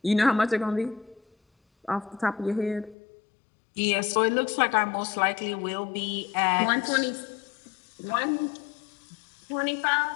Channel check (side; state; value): right; drops out; at 3.0 s